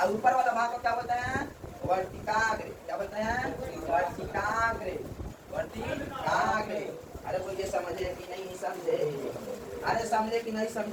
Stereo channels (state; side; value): identical; both; correlation 1.00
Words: ऊपर वाला भाग को क्या बोलते हैं? वर्तिकाग्र। क्या बोलते हैं? वर्तिकाग्र। वर्तिकाग्र। अरे वो ये समझे कि नहीं समझे? अरे समझे कि नहीं